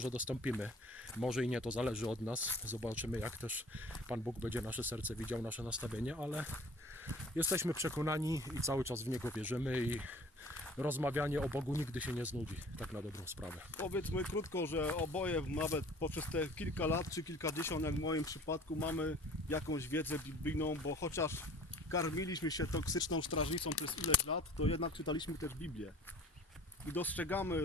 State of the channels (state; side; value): normal; both; correlation 0.48